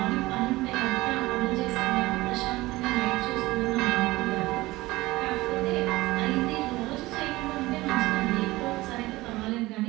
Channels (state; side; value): quieter; left; 19.5 dB